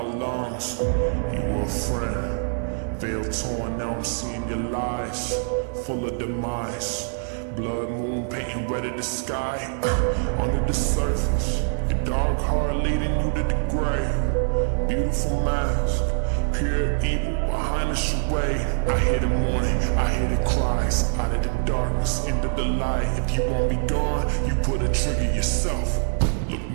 lungs. You were a friend, veil torn, now I'm seeing your lies, full of demise. Blood moon painting red at the sky, under the surface, your dark heart leading you to the grave. Beautiful mask, pure evil behind the charade. I hear the mourning, I hear the cries, out of the darkness into the light. If you want me gone, you put a trigger yourself. Look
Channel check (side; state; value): left; silent; 62 dB below the other